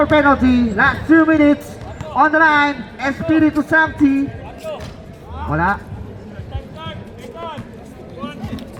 penalty. Last 2 minutes. On the line, Espiritu Santi. Wala.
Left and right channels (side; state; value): both; identical; correlation 1.00